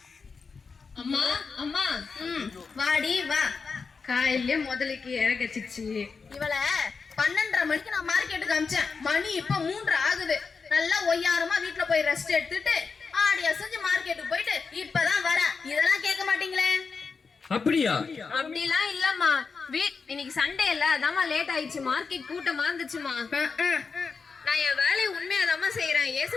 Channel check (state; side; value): quieter; right; 5.0 dB